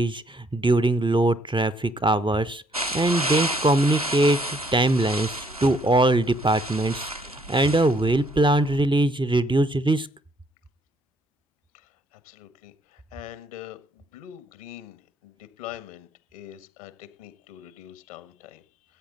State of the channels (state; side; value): normal; both; correlation 0.67